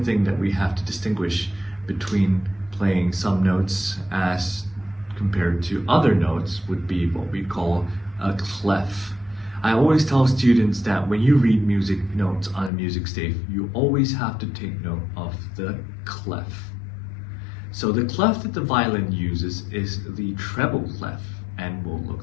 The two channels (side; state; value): right; drops out; at 12.7 s